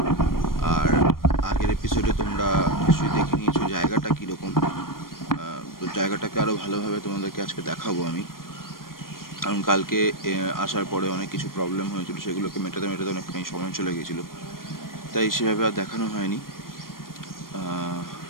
আর আগের এপিসোডে তোমরা নিশ্চয়ই দেখে নিয়েছো জায়গাটা কীরকম, তো জায়গাটাকে আরও ভালোভাবে তোমাদেরকে আজকে দেখাবো আমি। কারণ কালকে আসার পরে অনেক কিছু প্রবলেম হয়েছিল, সেগুলোকে মেটাতে অনেকখানি সময় চলে গেছিলো, তাই সেভাবে আর দেখানো হয়নি।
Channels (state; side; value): late; right; 0.91 ms